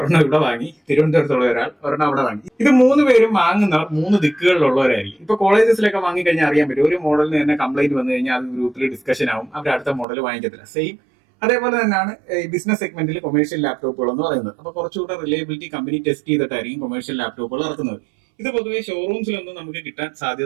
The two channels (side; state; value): left; drops out; at 10.1 s